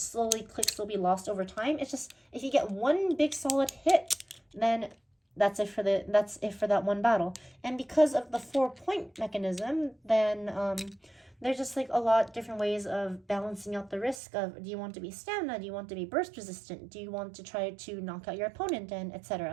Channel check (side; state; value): left; drops out; at 14.2 s